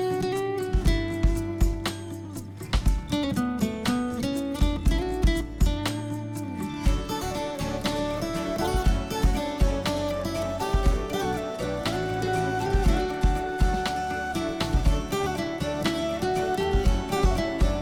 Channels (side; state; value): both; identical; correlation 1.00